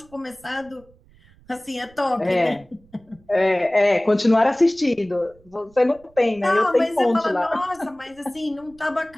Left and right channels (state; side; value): noise; right; rumble, 28 dB below the sound